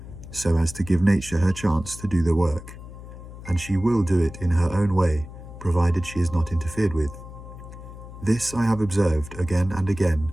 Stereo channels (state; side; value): noise; left; hum, 14 dB below the sound